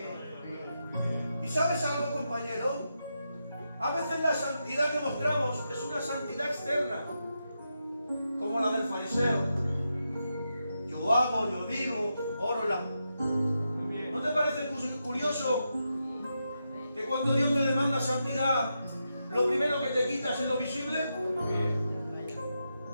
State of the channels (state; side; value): inverted; both; correlation -0.86